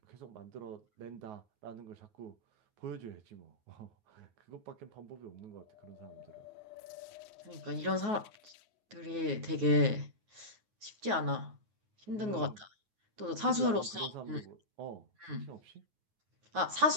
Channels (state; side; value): late; left; 9.4 ms